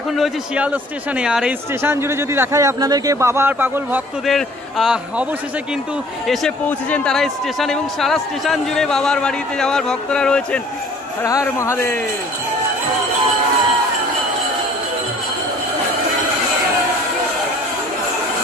এখন রয়েছে শিয়ালদা স্টেশনে, আর এই স্টেশন জুড়ে যদি দেখাই আপনাদেরকে বাবার পাগল ভক্তদের অবশেষে কিন্তু এসে পৌঁছেছেন তারা স্টেশন, এবং সারা স্টেশন জুড়ে বাবার বাড়িতে যাওয়ার ভক্তরা রয়েছেন। হর হর মহাদেব।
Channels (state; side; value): normal; both; correlation 0.52